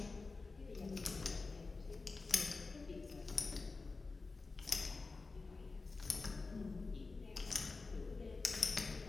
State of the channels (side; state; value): right; quieter; 3.9 dB